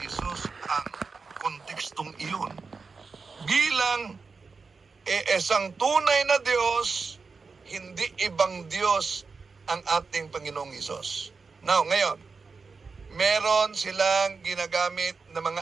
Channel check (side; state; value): left; quieter; 4.7 dB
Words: Jesus ang kontekstong iyon. Bilang isang tunay na Diyos, hindi ibang Diyos ang ating Panginoong Hesus. Now, ngayon, meron silang ginagamit na mga